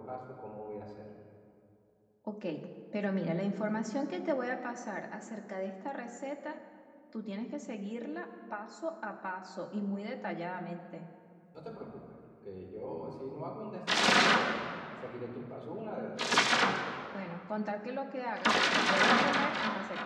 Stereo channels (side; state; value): both; identical; correlation 1.00